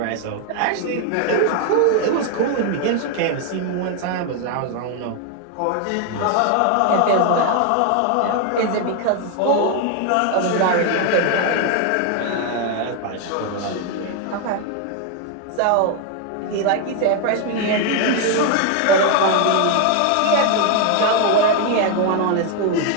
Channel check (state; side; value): different; both; correlation 0.01